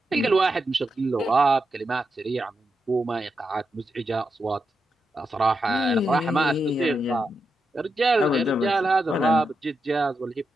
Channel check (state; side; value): normal; both; correlation 0.86